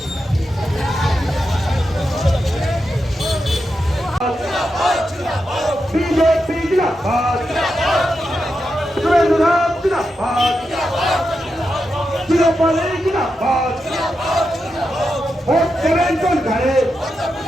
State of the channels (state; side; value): normal; both; correlation 0.87